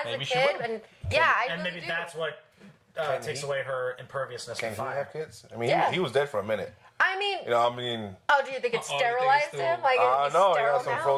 Maybe a she kid, will. and I And really maybe do. that's what takes he? away her imperviousness Can to he fire. have kids? I mean, Yeah. he was dead for a minute. I mean, Oh, do you think it you think it's sterilized still- him? Like, I is know. He sterile got some now?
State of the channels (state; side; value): identical; both; correlation 1.00